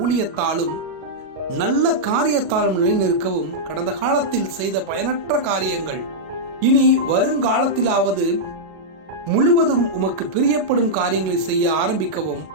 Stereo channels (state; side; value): late; left; 37 ms